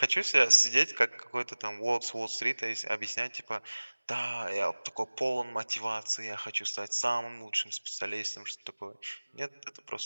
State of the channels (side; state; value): both; inverted; correlation -1.00